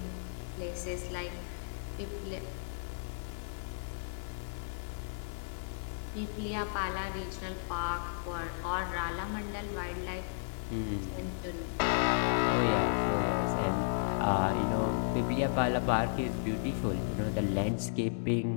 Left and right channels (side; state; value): right; silent; digital silence